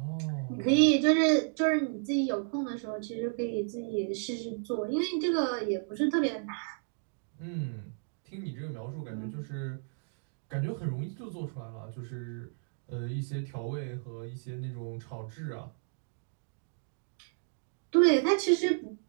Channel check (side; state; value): left; silent; digital silence